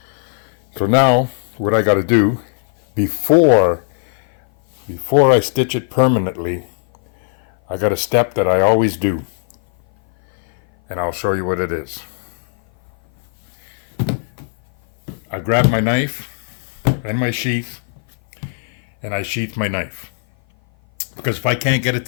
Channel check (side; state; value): right; silent; 56 dB below the other